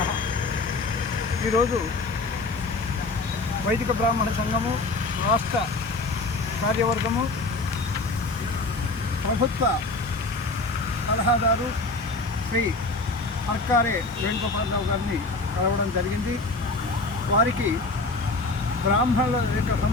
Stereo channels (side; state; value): right; quieter; 3.3 dB